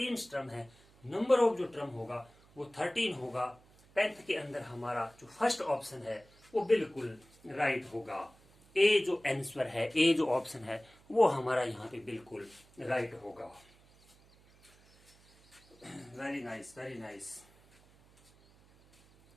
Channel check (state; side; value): noise; right; hum, 28 dB below the sound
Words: टर्म है। नंबर ऑफ जो टर्म होगा वो 13 होगा। 10th के अंदर हमारा जो फर्स्ट ऑप्शन है वो बिल्कुल राइट होगा। ए जो आंसर है, ए जो ऑप्शन है वो हमारा यहाँ पे बिल्कुल राइट होगा। Very nice, very nice.